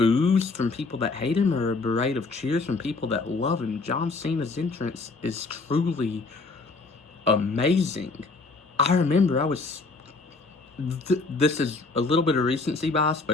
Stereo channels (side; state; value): right; quieter; 3.8 dB